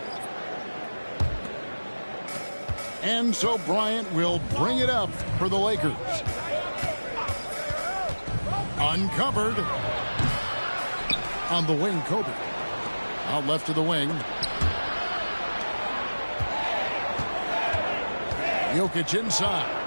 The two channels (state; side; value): inverted; both; correlation -1.00